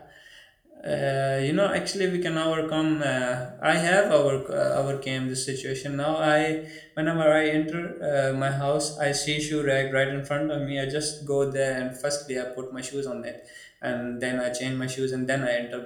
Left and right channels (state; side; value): identical; both; correlation 1.00